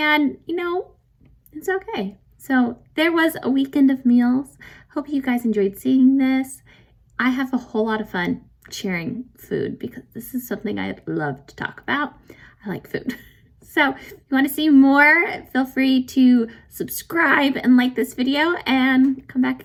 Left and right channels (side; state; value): both; identical; correlation 1.00